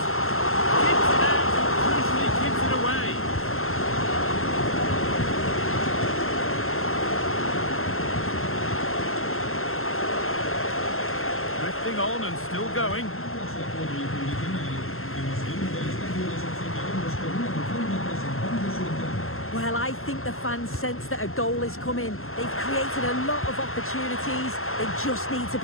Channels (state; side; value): late; right; 0.62 ms